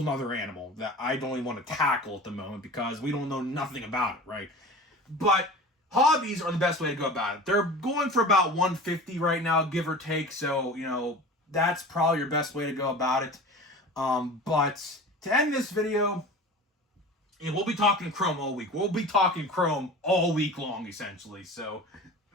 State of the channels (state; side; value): normal; both; correlation 0.36